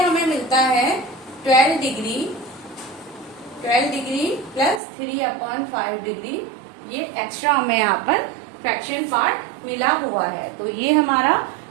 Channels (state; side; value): drops out; left; at 4.8 s